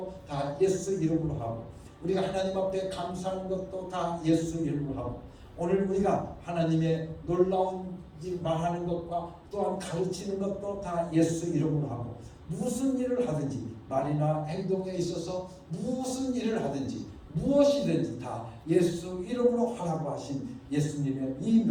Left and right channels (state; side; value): identical; both; correlation 1.00